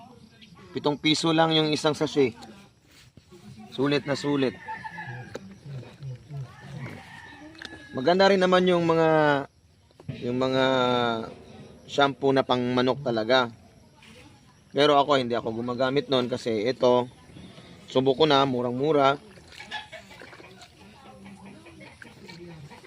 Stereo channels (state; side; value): identical; both; correlation 1.00